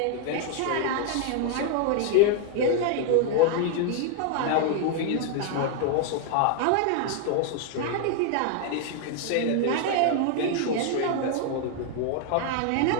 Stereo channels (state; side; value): different; both; correlation 0.00